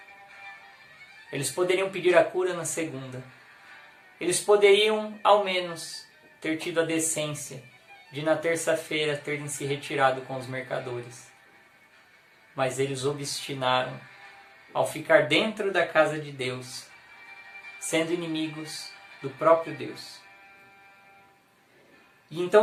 Eles poderiam pedir a cura na segunda. Eles poderiam, ao menos, ter tido a decência de, na terça-feira, terem se retirado com os mercadores. Mas eles obstinaram ao ficar dentro da casa de Deus, sendo inimigos do próprio Deus. E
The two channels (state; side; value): identical; both; correlation 1.00